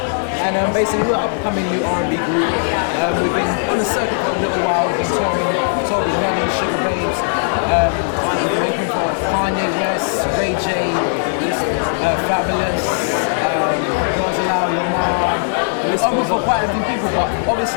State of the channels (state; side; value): silent; right; 64 dB below the other